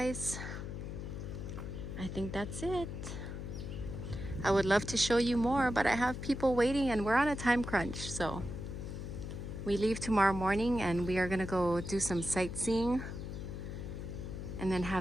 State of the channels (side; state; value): left; noise; hum, 7 dB below the sound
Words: I think that's it. I would love to show you more, but I have people waiting and we're on a time crunch. So we leave tomorrow morning and we are gonna go do some sightseeing and then